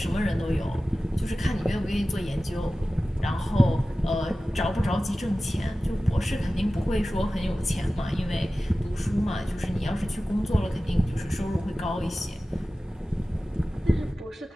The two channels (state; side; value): normal; both; correlation 0.96